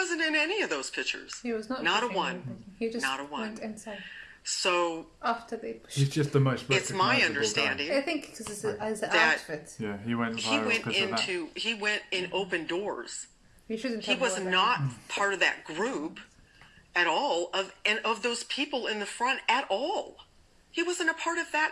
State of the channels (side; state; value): both; identical; correlation 1.00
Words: in any of those pictures. He was not a one. He just not a one. Went inside. So after they pushed. He's just the most. It's my understanding. I think because as an that outfit. Yeah, he went in open doors. He was not part of that group at all of those people in the front at all. He wasn't a part of that